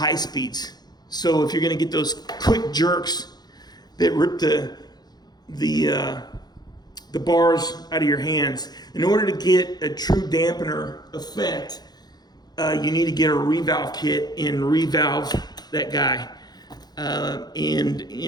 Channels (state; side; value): late; right; 0.20 ms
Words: speeds. So if you're going to get those quick jerks that rip the bars out of your hands, in order to get a true dampener effect, you need to get a revalve kit and revalve that guy.